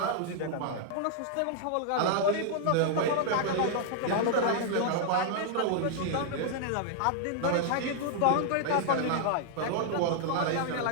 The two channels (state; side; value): different; both; correlation -0.01